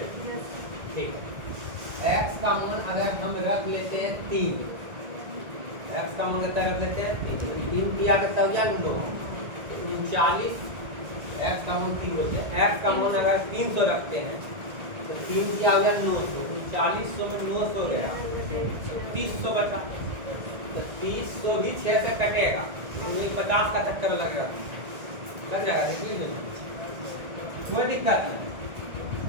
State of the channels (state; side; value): late; left; 1.8 ms